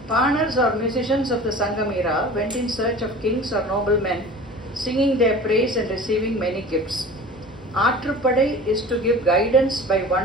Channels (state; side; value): normal; both; correlation 0.39